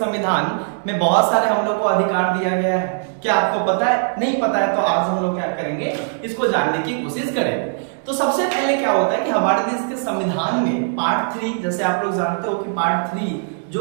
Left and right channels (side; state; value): left; silent; digital silence